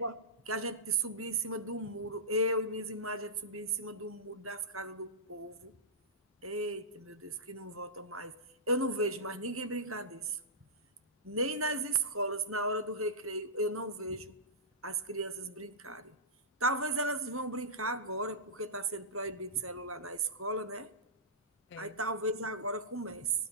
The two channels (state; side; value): normal; both; correlation -0.15